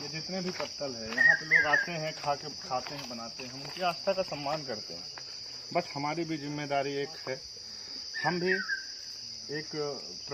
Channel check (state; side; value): identical; both; correlation 1.00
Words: ये जितने भी पत्तल है यहाँ पे लोग आते हैं, खाते हैं, बनाते हैं, हम उनकी आस्था का सम्मान करते हैं। बट हमारी भी जिम्मेदारी एक है, हम भी एक